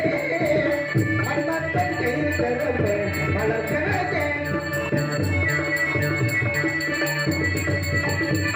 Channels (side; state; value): both; identical; correlation 1.00